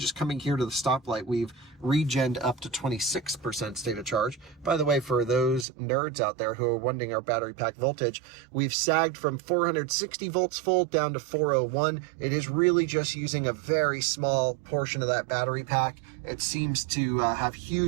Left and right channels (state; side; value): drops out; left; at 5.7 s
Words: coming here to the stoplight, we've regened up to 26% state of charge. By the way, for those nerds out there who are wondering our battery pack voltage, we've sagged from 460 volts full down to 401. It is really just using a very small portion of that battery pack. It seems to have